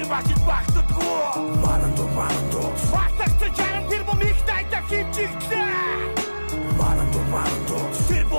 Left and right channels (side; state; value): both; inverted; correlation -1.00